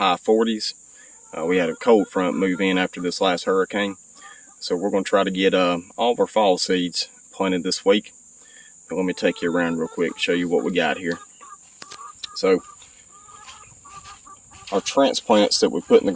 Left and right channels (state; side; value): identical; both; correlation 1.00